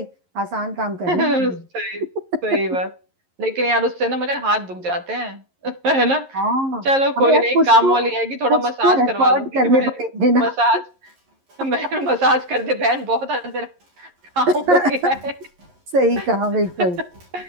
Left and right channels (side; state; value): left; late; 11 ms